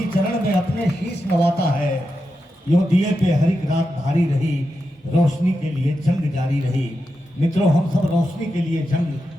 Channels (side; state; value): both; normal; correlation 0.88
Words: चरण में अपने शीश नवाता है। यूं दिए पे हरिक रात भारी रही, रोशनी के लिए जंग जारी रही। मित्रों, हम सब रोशनी के लिए जंग